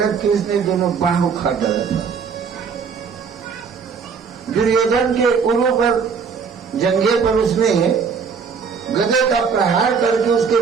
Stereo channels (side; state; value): left; quieter; 6.0 dB